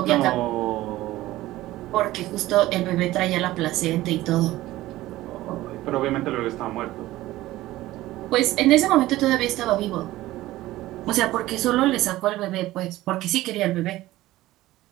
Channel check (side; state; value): left; quieter; 16.5 dB